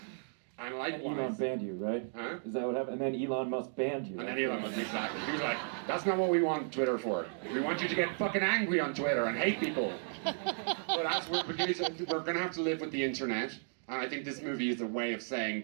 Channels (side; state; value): left; silent; digital silence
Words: And likewise, Elon banned you, right? Huh? Is that what happened? And then Elon Musk banned you. And then Elon Musk, exactly. He was like, that's not what we want Twitter for. We want you to get fucking angry on Twitter and hate people. But as we're going to have to live with the internet. And I think this movie is a way of saying,